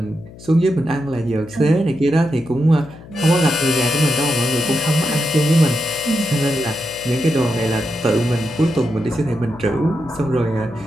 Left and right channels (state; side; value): noise; left; hum, 18 dB below the sound